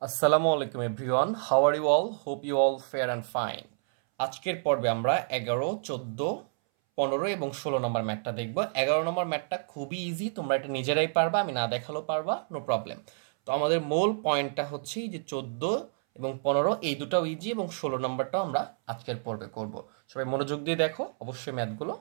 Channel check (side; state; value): left; silent; 58 dB below the other